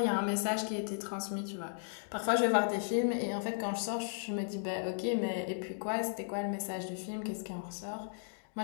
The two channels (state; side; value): silent; right; digital silence